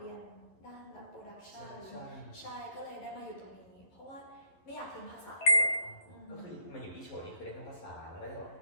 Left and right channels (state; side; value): late; right; 11 ms